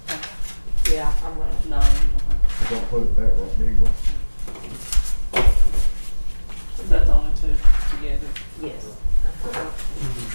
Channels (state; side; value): inverted; both; correlation -1.00